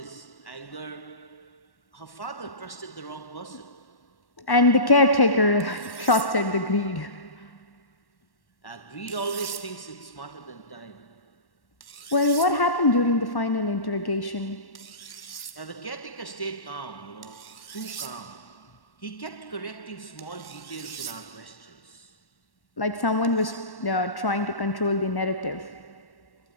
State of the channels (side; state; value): right; late; 1.1 ms